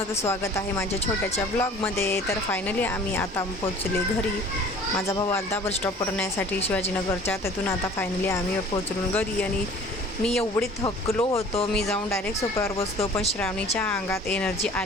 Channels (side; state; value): both; normal; correlation 0.48